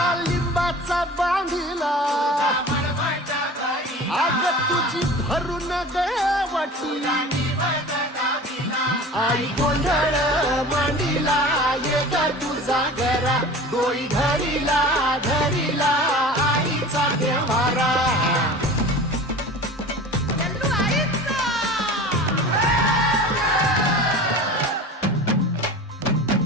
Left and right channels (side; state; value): both; normal; correlation 0.38